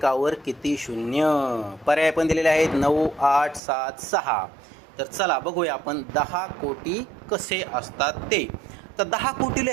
किती शून्य? पर्याय पण दिलेले आहेत 9, 8, 7, 6. तर चला बघूया आपण 10 कोटी कसे असतात ते. तर 10 कोटी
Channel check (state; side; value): drops out; left; at 3.6 s